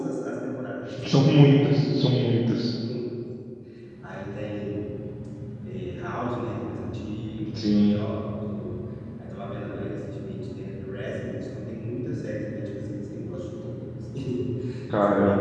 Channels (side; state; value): both; identical; correlation 1.00